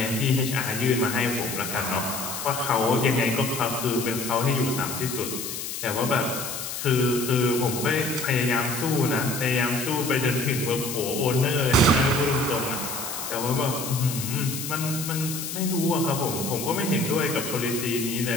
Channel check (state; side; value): noise; left; hiss, 6 dB below the sound